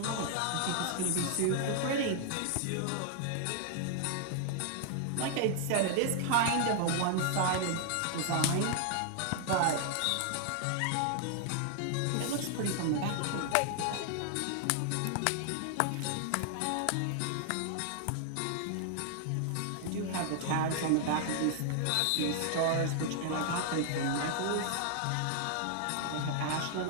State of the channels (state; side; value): different; both; correlation 0.00